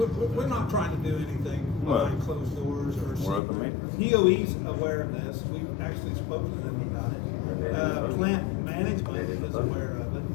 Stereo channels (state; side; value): drops out; right; at 3.4 s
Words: We're not trying to do anything behind closed doors or We're at the secret. meeting. DOE's aware of this, we've actually spoken to them about it. Plant management is aware of it,